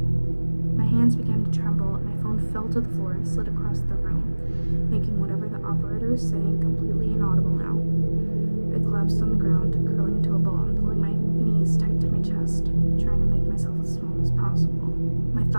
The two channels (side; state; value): both; inverted; correlation -1.00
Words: My hands began to tremble, and my phone fell to the floor and slid across the room, making whatever the operator was saying completely inaudible now. I collapsed on the ground, curling into a ball and pulling my knees tight to my chest, trying to make myself as small as possible. My